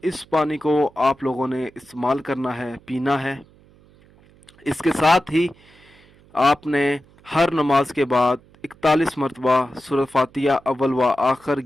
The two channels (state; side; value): noise; right; hum, 28 dB below the sound